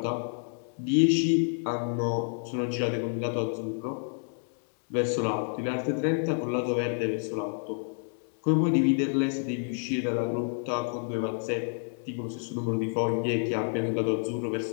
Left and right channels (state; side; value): silent; right; 58 dB below the other